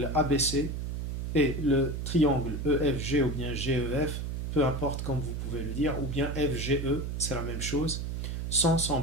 ABC et le triangle EFG ou bien GEF, peu importe comme vous pouvez le dire, ou bien FGE, c'est la même chose, sont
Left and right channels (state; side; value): noise; right; hum, 3 dB below the sound